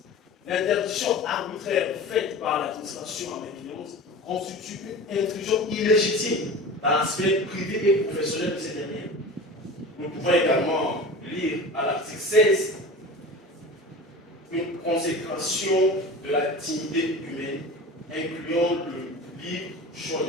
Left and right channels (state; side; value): normal; both; correlation 0.35